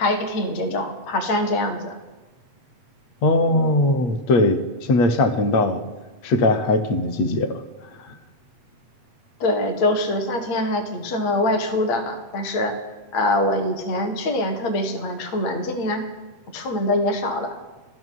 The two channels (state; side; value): late; right; 8.6 ms